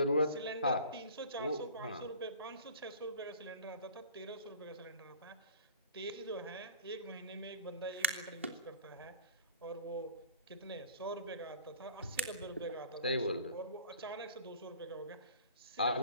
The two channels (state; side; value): inverted; both; correlation -0.42